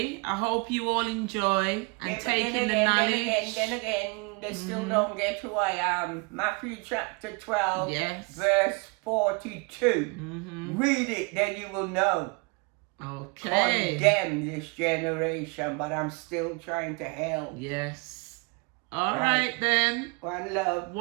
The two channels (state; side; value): quieter; left; 30.9 dB